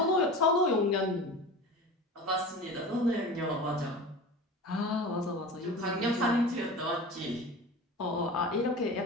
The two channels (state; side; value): normal; both; correlation 0.33